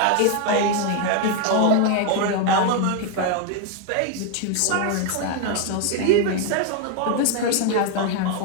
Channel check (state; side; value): different; both; correlation 0.01